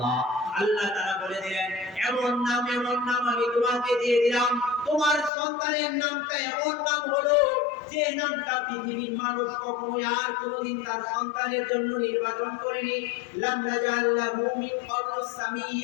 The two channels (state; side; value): drops out; right; at 5.3 s